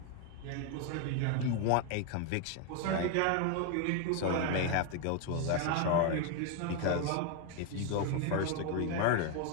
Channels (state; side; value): different; both; correlation 0.01